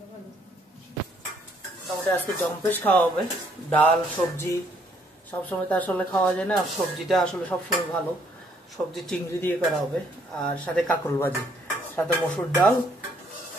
মোটামুটি আজকে জম্পেশ খাওয়া হবে। ডাল সবজি সবসময় তো আসলে খাওয়া যায় না, সবজিটা আসলে সবসময় ভালো। সবজি চিংড়ি দিয়ে করা হবে, আর সাথে কাঁকরোল ভাজি, সাথে মসুর ডাল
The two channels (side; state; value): both; normal; correlation 0.67